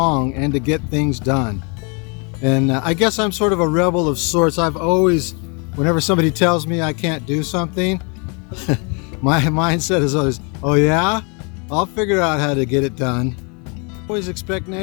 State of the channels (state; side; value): quieter; right; 34.2 dB